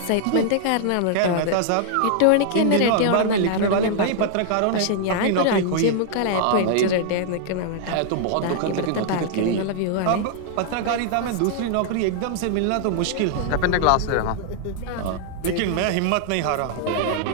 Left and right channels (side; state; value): both; different; correlation -0.01